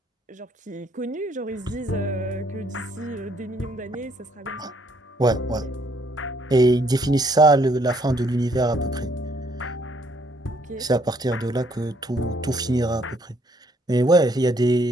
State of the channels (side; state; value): both; normal; correlation 0.67